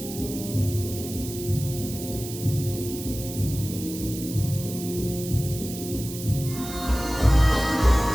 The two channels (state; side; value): noise; right; hiss, 11 dB below the sound